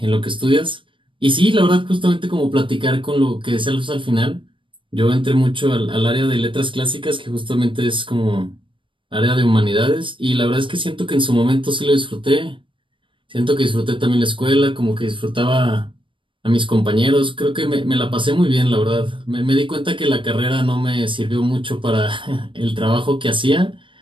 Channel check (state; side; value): late; left; 0.25 ms